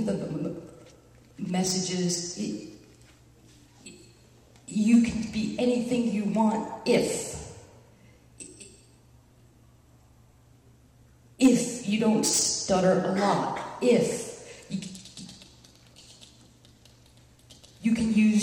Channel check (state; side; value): identical; both; correlation 1.00